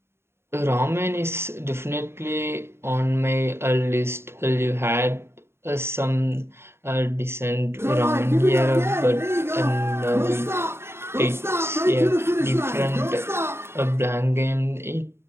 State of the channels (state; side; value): late; left; 0.12 ms